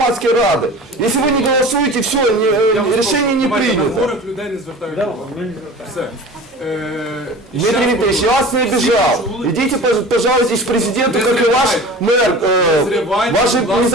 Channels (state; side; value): normal; both; correlation 0.38